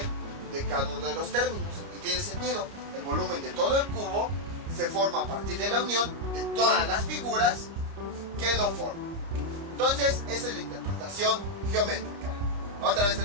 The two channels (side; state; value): left; late; 30 ms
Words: de cada uno de los términos. Y tiene sentido, el volumen de todo el cubo se forma a partir de la unión de todas las figuras que lo forman. Entonces, esa es la interpretación geométrica. Otra vez te